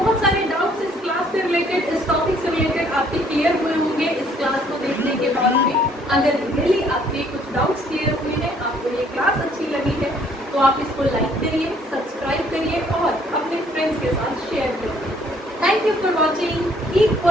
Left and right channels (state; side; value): normal; both; correlation 0.63